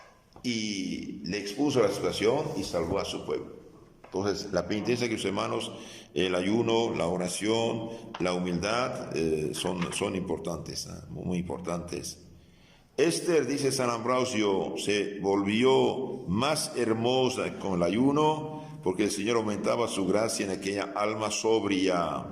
y le expuso a la situación y salvó a su pueblo. Entonces, la penitencia, que los hermanos, el ayuno, la oración, la humildad, son importantes, muy importantes. Esther, dice San Ambrosio, se volvió más hermosa con el ayuno porque el Señor aumentaba su gracia en aquella alma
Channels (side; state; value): both; identical; correlation 1.00